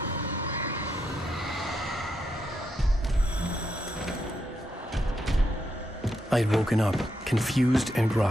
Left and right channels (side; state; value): both; normal; correlation 0.81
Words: I had woken up, confused and